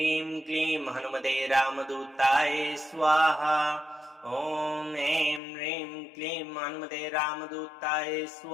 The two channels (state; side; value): drops out; right; at 5.4 s